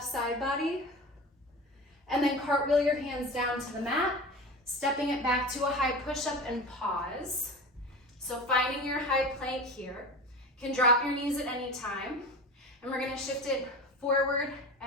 side body, and then cartwheel your hands down to the mat, stepping it back to a high push-up and pause. So finding your high plank here. Can drop your knees at any time. And we're gonna shift it forward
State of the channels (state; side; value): normal; both; correlation 0.31